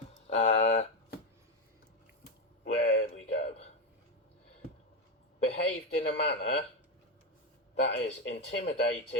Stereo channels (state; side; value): normal; both; correlation 0.09